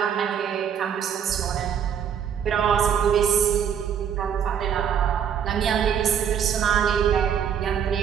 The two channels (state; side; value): quieter; left; 8.3 dB